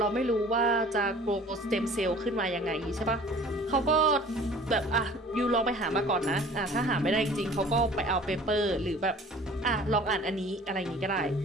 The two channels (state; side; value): normal; both; correlation 0.48